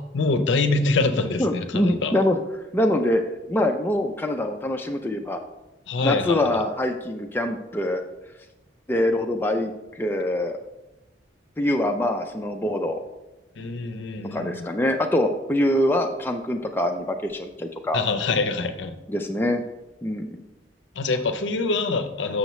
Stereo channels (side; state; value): both; normal; correlation 0.57